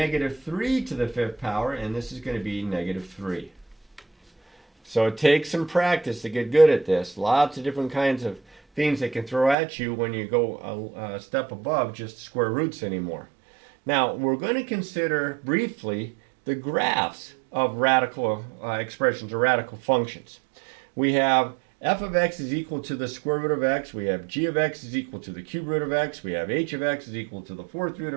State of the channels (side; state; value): left; drops out; at 9.6 s